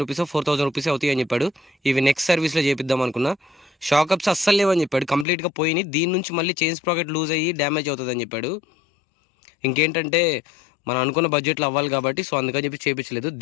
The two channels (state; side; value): drops out; right; at 5.2 s